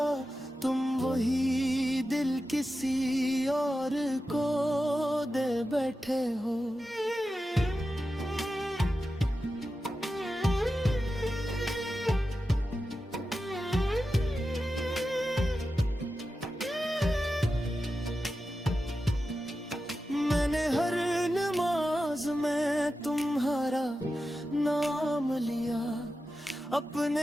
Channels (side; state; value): both; normal; correlation 0.92